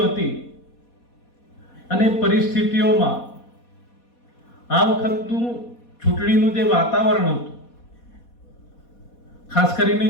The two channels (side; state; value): right; late; 4.2 ms